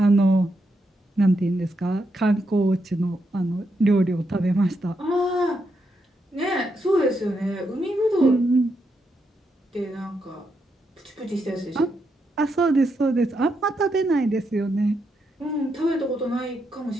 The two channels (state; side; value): normal; both; correlation 0.81